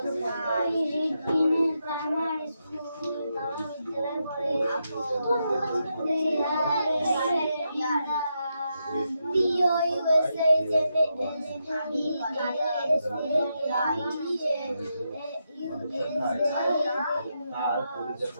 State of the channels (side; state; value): both; inverted; correlation -0.84